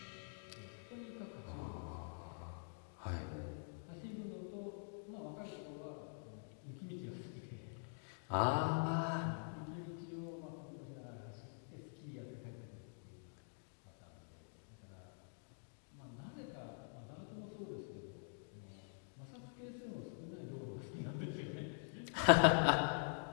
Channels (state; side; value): silent; right; digital silence